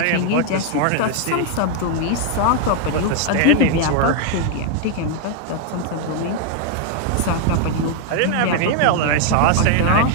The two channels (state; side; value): different; both; correlation 0.00